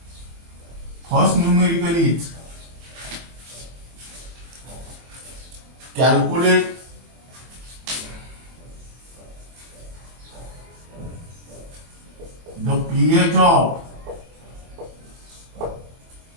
First numerical is calculate the pH of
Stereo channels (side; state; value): left; late; 24 ms